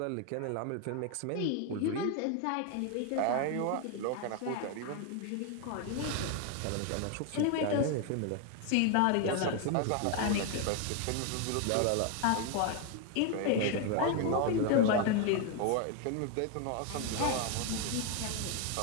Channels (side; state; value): both; different; correlation 0.01